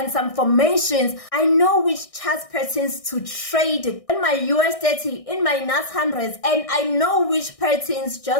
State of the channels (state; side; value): late; right; 1.6 ms